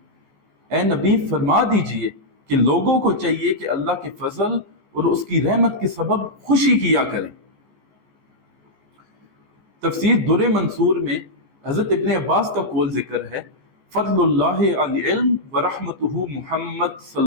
اے نبی فرما دیجئے کہ لوگوں کو چاہیے کہ اللہ کے فضل اور اس کی رحمت کے سبب خوشی کیا کریں۔ تفسیر در منصور میں حضرت ابن عباس کا قول ذکر ہے، فضل اللہ علی علم ورحمتہ محمد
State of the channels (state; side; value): late; left; 14 ms